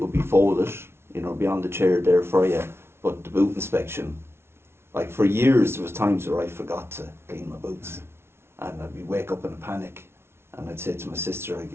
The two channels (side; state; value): left; late; 0.12 ms